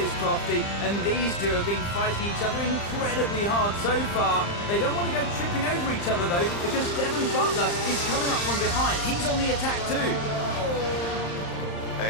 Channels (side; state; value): right; late; 35 ms